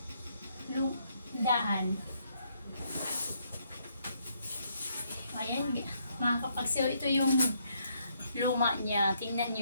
Daan. Ayan, mga kapaksil, ito yung luma niya. Tingnan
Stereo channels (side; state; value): both; inverted; correlation -0.72